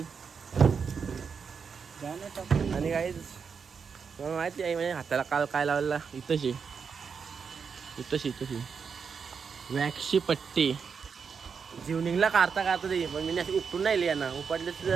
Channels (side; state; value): left; quieter; 6.1 dB